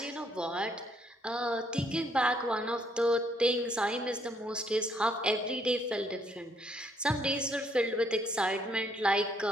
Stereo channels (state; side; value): normal; both; correlation 0.69